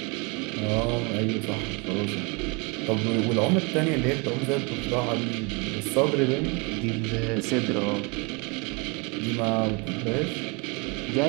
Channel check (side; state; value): left; quieter; 30.5 dB